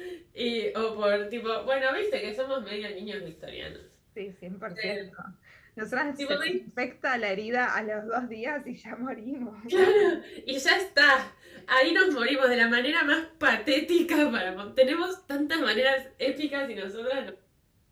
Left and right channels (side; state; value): both; identical; correlation 1.00